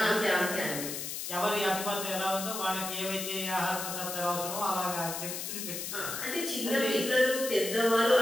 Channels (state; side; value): noise; left; hiss, 5 dB below the sound